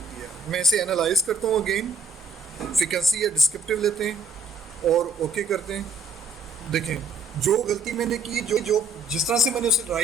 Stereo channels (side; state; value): left; quieter; 3.5 dB